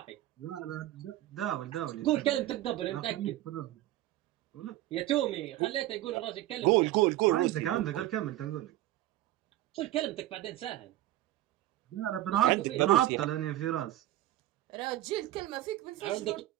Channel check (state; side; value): quieter; left; 14.8 dB